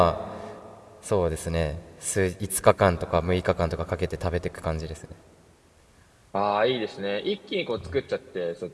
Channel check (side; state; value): both; identical; correlation 1.00